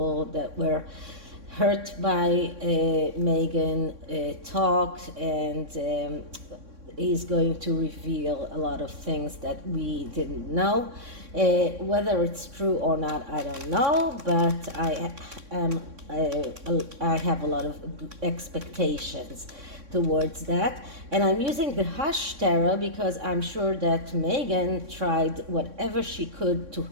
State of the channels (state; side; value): late; left; 3.6 ms